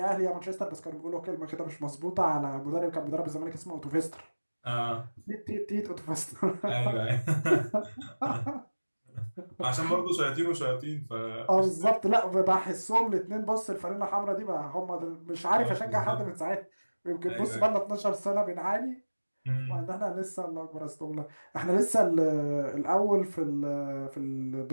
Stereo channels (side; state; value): both; inverted; correlation -1.00